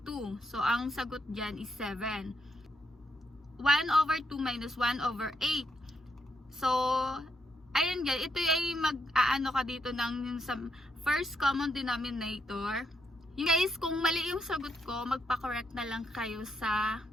So, ang sagot dyan is 7. 1 over 2 minus 1 over 8. So, ayun guys, ito ay mag-aano ka dito ng sa first common denominator. Yung guys, kung mali yung sagot ko, magpa-correct na lang kayo sa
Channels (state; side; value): normal; both; correlation 0.79